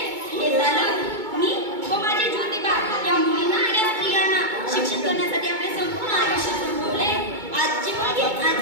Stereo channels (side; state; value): left; late; 2.2 ms